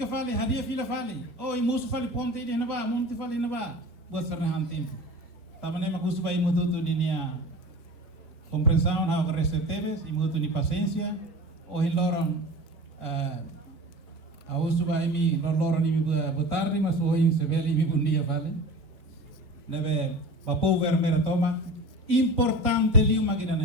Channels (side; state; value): both; normal; correlation 0.35